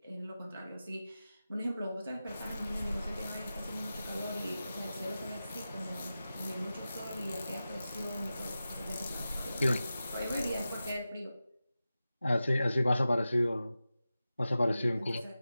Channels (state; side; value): inverted; both; correlation -0.93